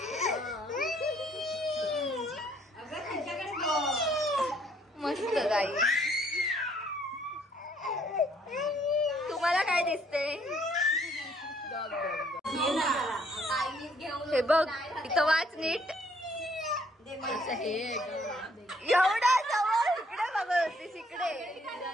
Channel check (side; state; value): both; normal; correlation 0.65